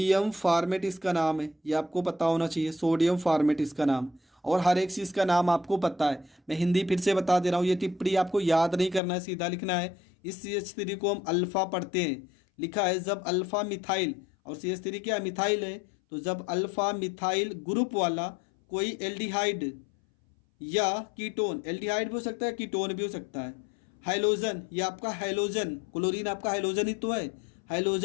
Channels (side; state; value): right; drops out; at 9.0 s